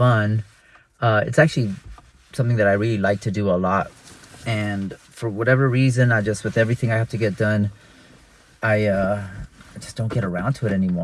It's actually something that I really like to do a lot, and for whatever reason, I just with everything I have to get done, I just don't get around to it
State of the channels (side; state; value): both; identical; correlation 1.00